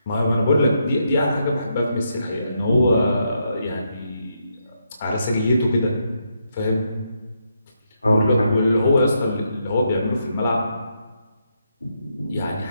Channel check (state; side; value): inverted; both; correlation -0.80